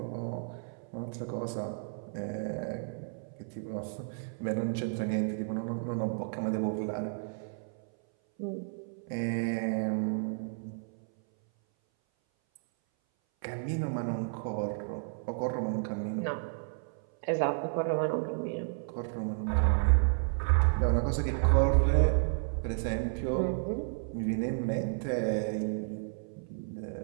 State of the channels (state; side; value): silent; left; 56 dB below the other